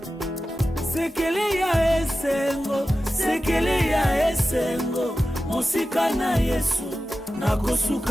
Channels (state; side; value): normal; both; correlation 0.94